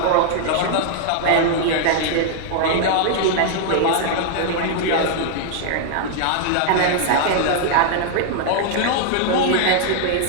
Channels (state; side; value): different; both; correlation -0.01